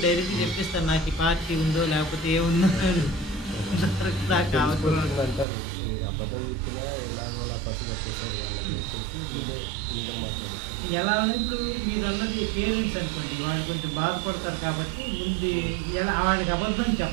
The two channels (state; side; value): drops out; left; at 5.5 s